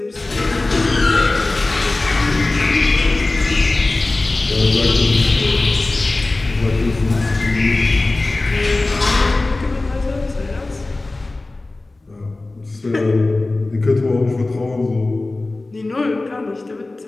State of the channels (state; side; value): quieter; right; 3.1 dB